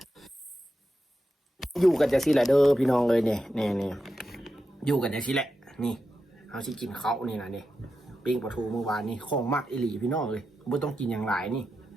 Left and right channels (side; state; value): both; normal; correlation 0.89